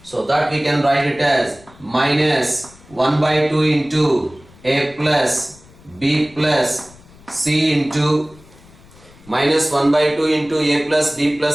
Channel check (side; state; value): left; noise; rumble, 25 dB below the sound